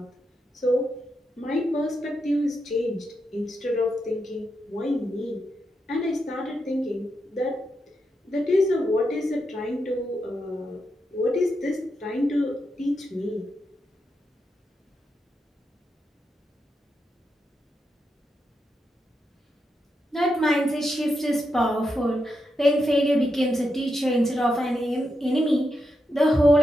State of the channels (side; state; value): both; normal; correlation 0.85